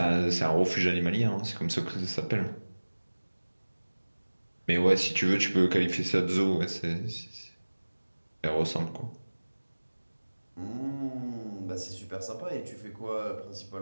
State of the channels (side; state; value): both; inverted; correlation -1.00